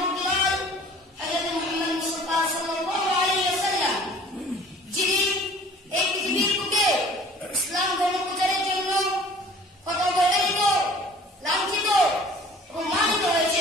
হযরত মুহাম্মদ মুস্তাফা সাল্লাল্লাহু আলাইহি ওয়াসাল্লাম, যিনি এই পৃথিবীর বুকে ইসলাম ধর্ম প্রচারের জন্য কত অবহেলিত, লাঞ্ছিত এবং মানিত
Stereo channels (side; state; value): both; normal; correlation 0.49